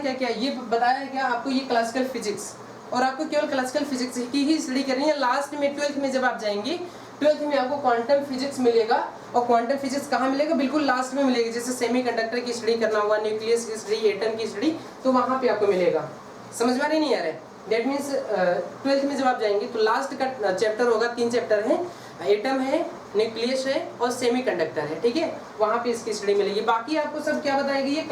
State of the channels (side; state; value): both; identical; correlation 1.00